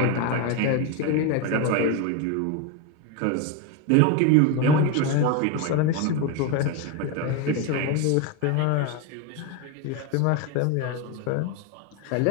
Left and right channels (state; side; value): different; both; correlation 0.02